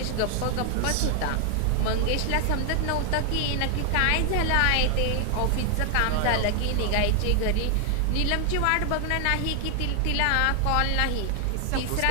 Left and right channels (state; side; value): different; both; correlation 0.00